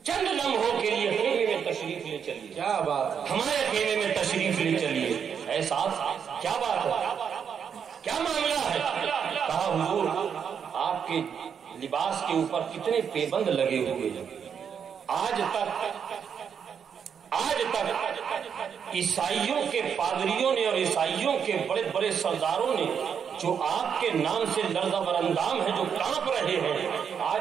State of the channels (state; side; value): quieter; left; 7.3 dB